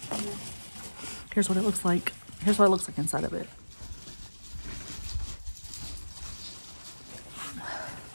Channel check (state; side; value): inverted; both; correlation -1.00